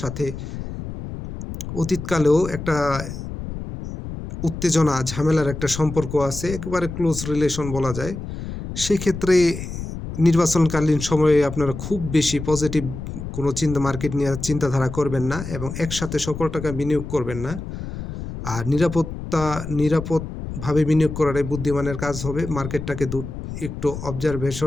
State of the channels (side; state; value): left; noise; rumble, 8 dB below the sound